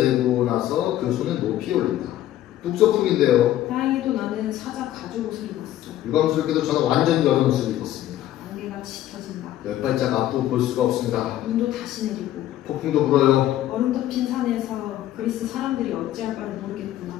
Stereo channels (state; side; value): quieter; right; 13.2 dB